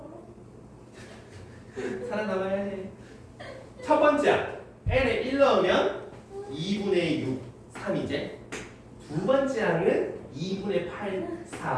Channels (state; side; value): identical; both; correlation 1.00